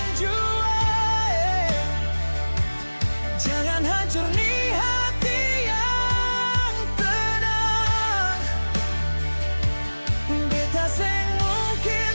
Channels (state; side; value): inverted; both; correlation -1.00